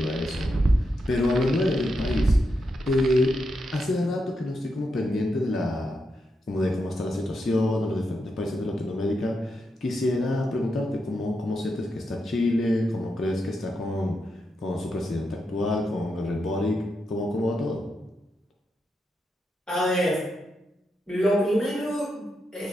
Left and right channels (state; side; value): normal; both; correlation 0.84